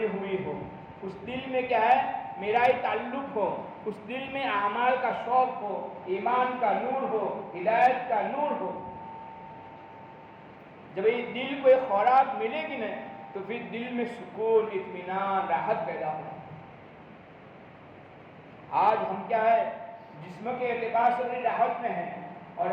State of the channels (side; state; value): both; identical; correlation 1.00